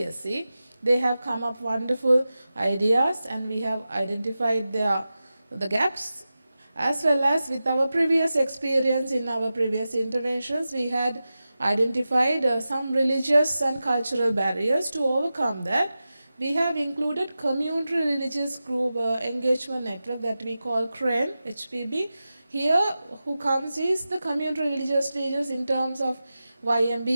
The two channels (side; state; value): both; inverted; correlation -0.94